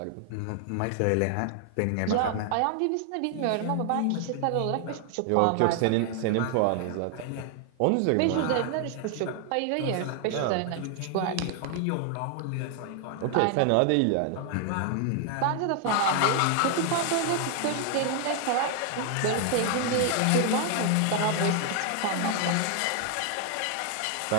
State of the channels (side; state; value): both; different; correlation 0.00